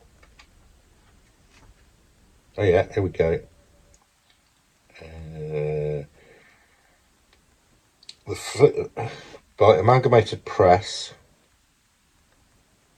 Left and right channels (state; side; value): identical; both; correlation 1.00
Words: Oh yeah, here we go. By Amalgamated Press.